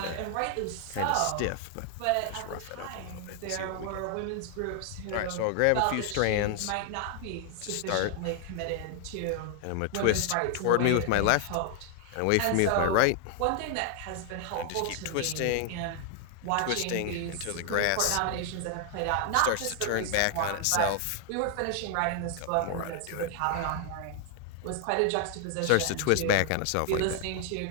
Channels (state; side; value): different; both; correlation 0.00